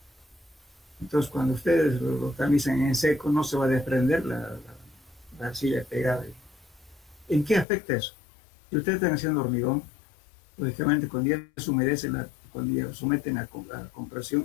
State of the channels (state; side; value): drops out; right; at 7.7 s